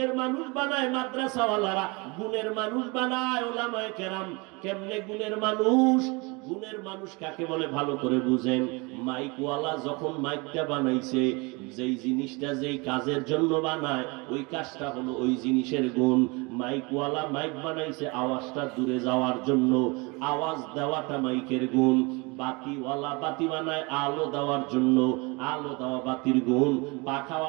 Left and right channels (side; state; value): left; quieter; 27.8 dB